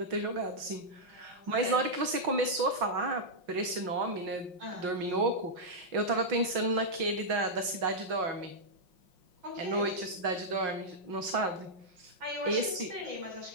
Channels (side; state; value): left; late; 5.5 ms